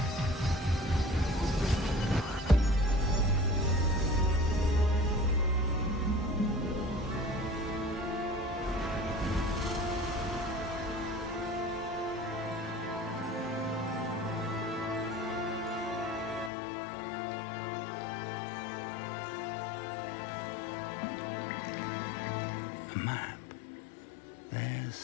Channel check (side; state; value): right; drops out; at 16.5 s